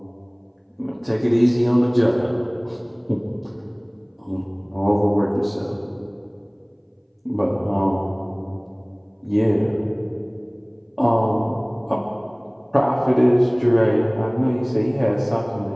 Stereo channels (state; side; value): identical; both; correlation 1.00